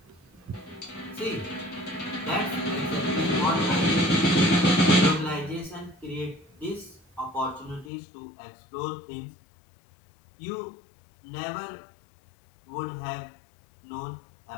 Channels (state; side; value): drops out; right; at 7.9 s